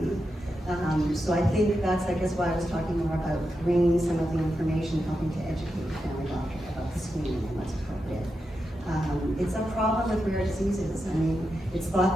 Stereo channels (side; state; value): both; normal; correlation 0.88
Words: So I think that's, I guess, why I was talking more about bringing some of the information, helping to educate the family doctor about the screening and what's appropriate. It's a problem with rare diseases. I mean, it's